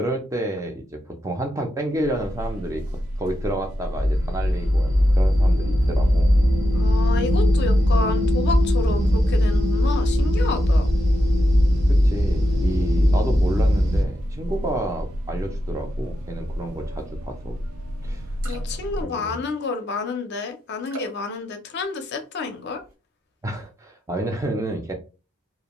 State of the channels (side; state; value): both; normal; correlation 0.86